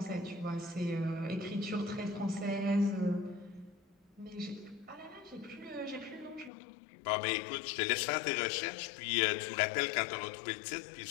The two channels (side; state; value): right; drops out; at 6.5 s